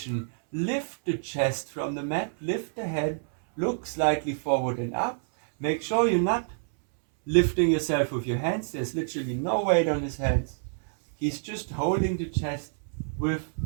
lift the chest from the mat, lift the head, look slightly forward and up. Make sure you're not lifting yourself with your hands. There's literally no weight on his hands. He's just holding the chest with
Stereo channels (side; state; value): left; silent; 60 dB below the other